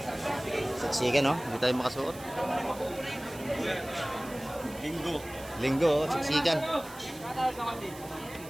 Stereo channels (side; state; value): right; noise; hiss, 17 dB below the sound